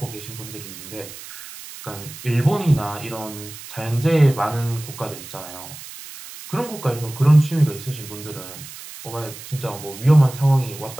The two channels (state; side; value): noise; right; hiss, 14 dB below the sound